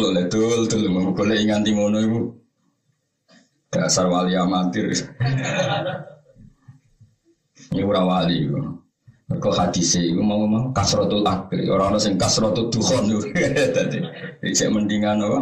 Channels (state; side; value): identical; both; correlation 1.00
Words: le dul golek nganti ngono iku. Dasar wali amatir. Ini ora wali iku. Kau hadis itu mau kasrotul akli orang sing kasrotul dukhon itu tadi saya mendingan